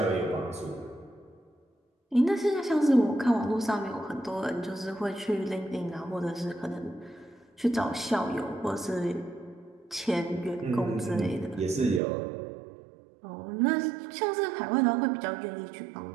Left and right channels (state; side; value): drops out; left; at 12.0 s